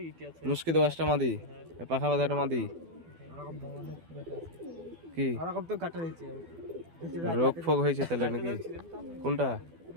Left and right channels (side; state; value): left; late; 12 ms